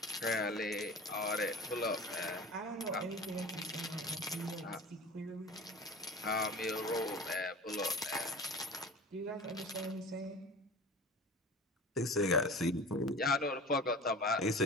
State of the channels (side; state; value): both; normal; correlation 0.38